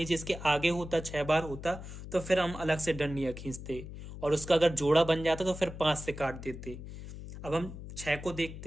इसके आगे होता 6 बार होता, तो फिर हम अलग से डंडियां खींचते, और उसका अगर जोड़ा बन जाता तो फिर 5 से काट देते। अब हम 6 को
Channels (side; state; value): left; noise; hum, 11 dB below the sound